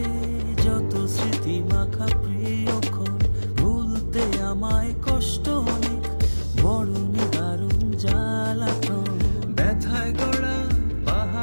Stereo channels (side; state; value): both; inverted; correlation -1.00